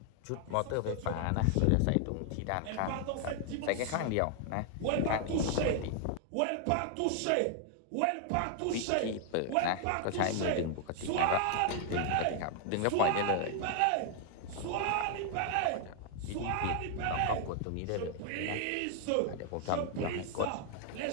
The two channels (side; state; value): both; different; correlation 0.00